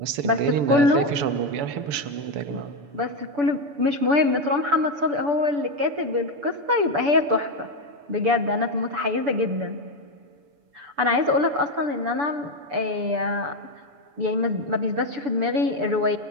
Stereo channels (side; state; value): left; late; 6.9 ms